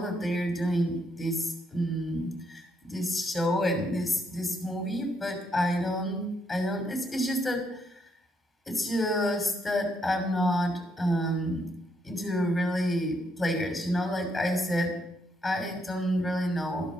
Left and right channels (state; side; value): normal; both; correlation 0.75